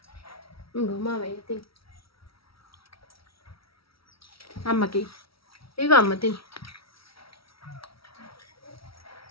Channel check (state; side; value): late; right; 0.75 ms